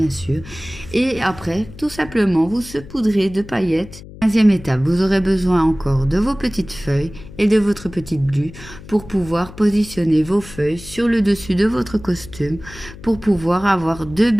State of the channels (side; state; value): left; noise; hum, 17 dB below the sound